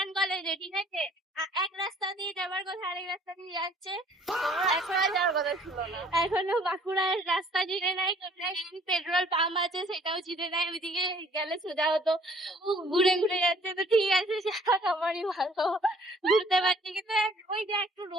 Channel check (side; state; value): both; normal; correlation 0.57